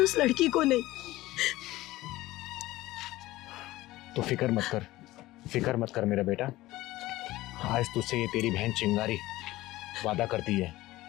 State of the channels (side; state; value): right; quieter; 17.6 dB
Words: उस लड़की को नहीं। तो फिक्र मत कर मेरा बेटा। आज तुझसे ये तेरी बहन चिंगारी वादा करती है,